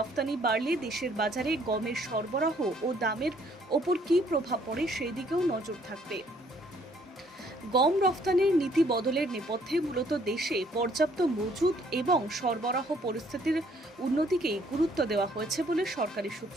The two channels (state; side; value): normal; both; correlation 0.64